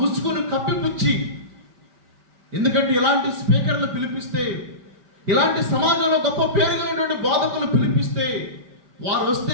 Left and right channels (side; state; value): left; late; 5.2 ms